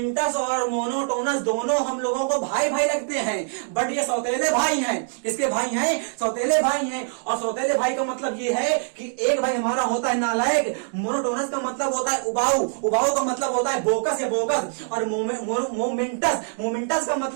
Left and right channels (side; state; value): left; silent; 63 dB below the other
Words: और मोनोटोनस दोनों हम लोगों को भाई भाई लगते हैं, बट ये सौतेले भाई हैं। किसके भाई हैं? सौतेले भाई हैं। और सौतेले भाई का मतलब ये है कि एक भाई हमारा होता है नालायक, मोनोटोनस का मतलब होता है उबाऊ, उबाऊ का मतलब होता है बोकस या बोगस, और मोमेंटस का